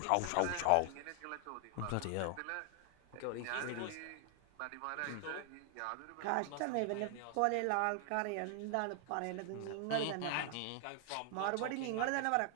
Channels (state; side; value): different; both; correlation 0.00